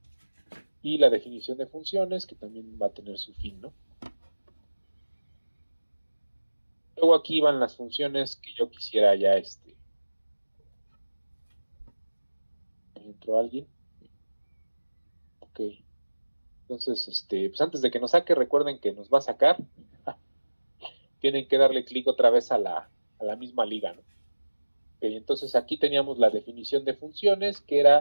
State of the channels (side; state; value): both; inverted; correlation -1.00